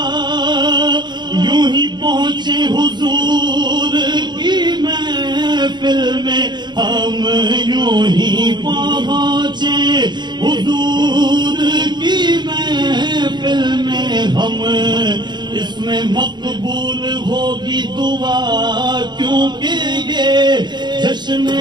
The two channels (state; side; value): late; left; 0.21 ms